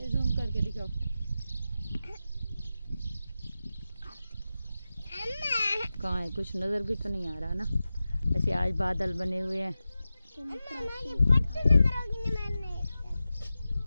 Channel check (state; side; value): inverted; both; correlation -0.94